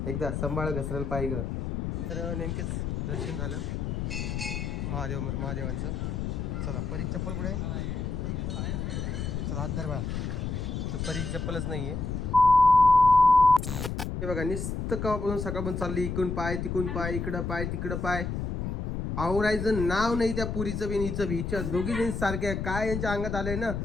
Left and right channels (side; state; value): left; noise; rumble, 3 dB below the sound